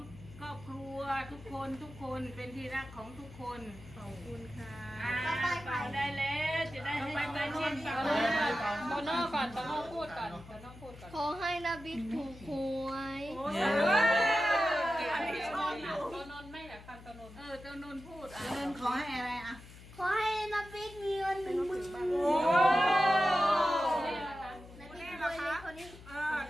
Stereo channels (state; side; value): noise; left; hum, 18 dB below the sound